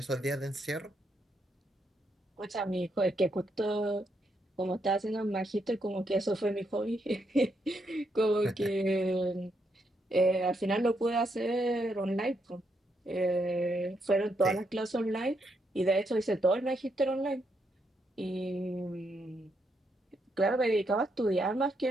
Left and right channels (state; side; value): normal; both; correlation 0.78